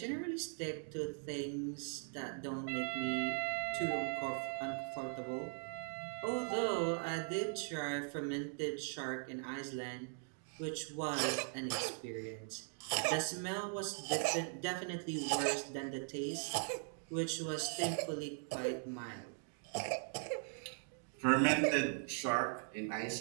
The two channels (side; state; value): left; silent; 51 dB below the other